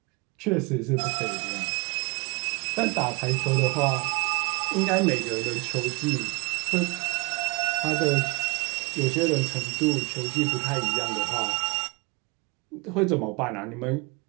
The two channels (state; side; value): quieter; left; 28.8 dB